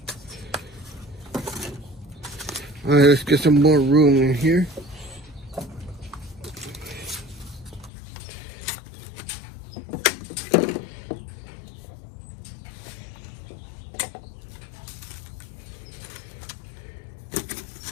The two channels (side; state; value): right; drops out; at 7.9 s